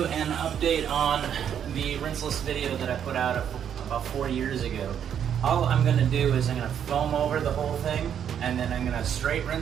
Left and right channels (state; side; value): quieter; left; 8.8 dB